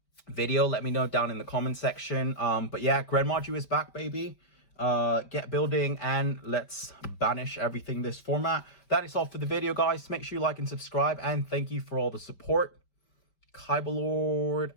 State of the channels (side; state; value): right; late; 5.1 ms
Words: video, let me know down in the comment section. But yeah, GREN MAJU is back, baby. Get building, and let's banish everything this format. That is all for the video, guys. Make sure you like and subscribe, and thank you for all the support. Kaibalord